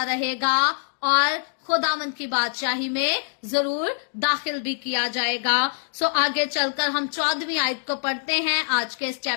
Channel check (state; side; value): silent; right; digital silence